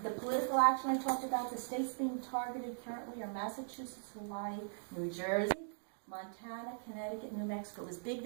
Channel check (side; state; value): left; silent; digital silence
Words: The political action I talked about, the states being targeted currently are Massachusetts, Hawaii, New Jersey, Montana, Connecticut, New Mexico. It was big